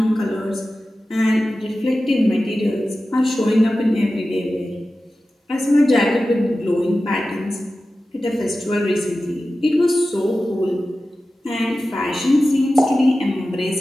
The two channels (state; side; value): normal; both; correlation 0.94